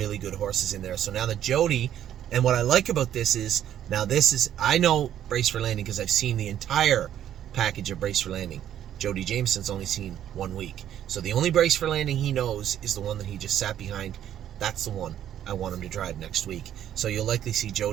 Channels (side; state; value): left; quieter; 10.8 dB